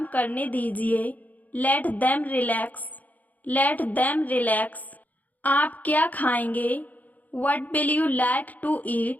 करने दीजिए, let them relax, let them relax. आप क्या खाएंगे? What will you like to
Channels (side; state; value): right; late; 0.079 ms